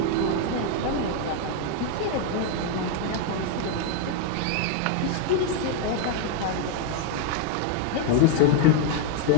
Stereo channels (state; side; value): different; both; correlation 0.00